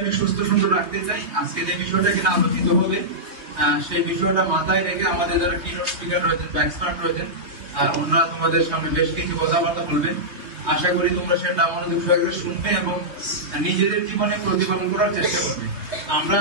সুস্থ সুন্দর রাখতে চাই, আজকে যে বিষয়টা কিনা আলোচিত হবে সেই বিষয়টা মাথায় রেখে আমাদের যারা কিনোট স্পিকার রয়েছেন বা এক্সপার্ট রয়েছেন, ওনারা তোমাদের সামনে বেশ কিছু কথাবার্তা বলবেন। আশা করি তোমরা সেটা মনোযোগ সহকারে শুনবে এবং নিজেদের জীবনে প্রতিপালন করার চেষ্টা করবে। আমরা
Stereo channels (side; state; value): left; late; 3.2 ms